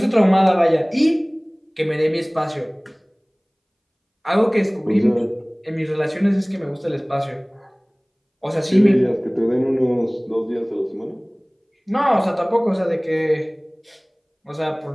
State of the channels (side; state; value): both; identical; correlation 1.00